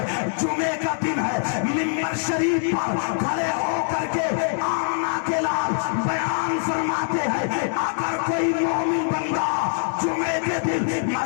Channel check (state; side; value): silent; right; digital silence